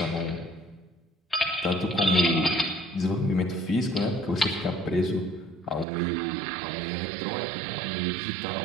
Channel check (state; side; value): drops out; left; at 5.9 s